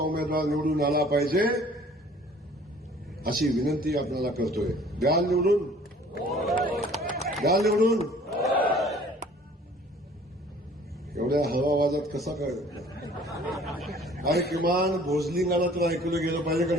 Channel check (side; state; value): both; normal; correlation 0.52